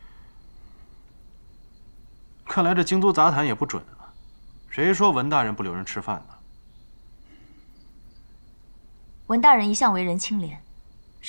看来这京都杂谈也不准啊！谁说文大人不留人吃饭呢？文大人一向为人清廉，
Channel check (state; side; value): inverted; both; correlation -1.00